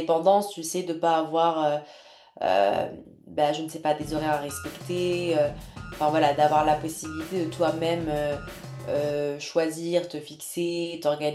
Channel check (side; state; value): both; identical; correlation 1.00